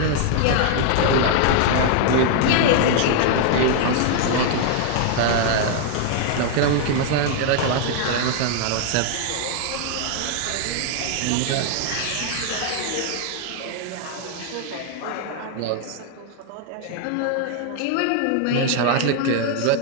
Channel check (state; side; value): different; both; correlation 0.00